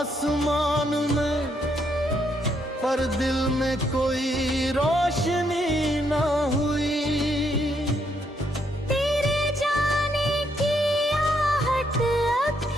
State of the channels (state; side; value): normal; both; correlation 0.74